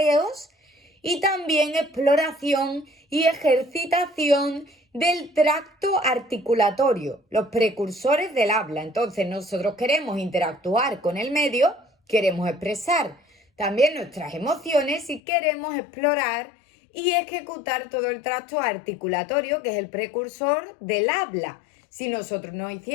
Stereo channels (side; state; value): right; drops out; at 15.2 s